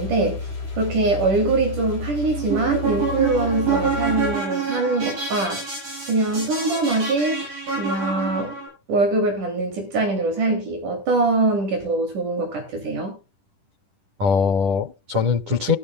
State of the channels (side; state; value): left; late; 10 ms